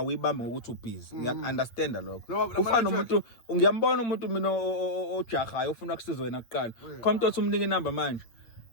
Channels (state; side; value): late; right; 8.4 ms